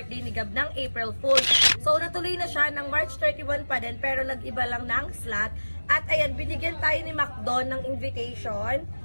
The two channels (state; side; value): inverted; both; correlation -1.00